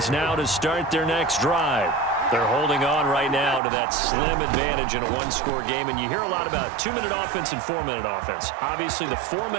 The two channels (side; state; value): left; drops out; at 3.6 s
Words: now to start their next drive. They're holding on right now to that slim advantage in a 1-score game. And you hear a lot about 2-minute offense and 4-minute offense. Obviously, the